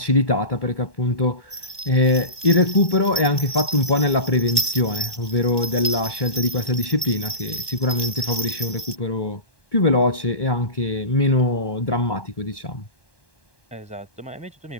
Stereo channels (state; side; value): late; right; 1.1 ms